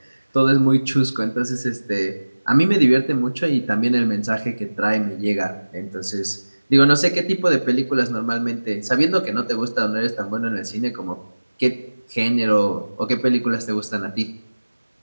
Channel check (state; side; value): inverted; both; correlation -1.00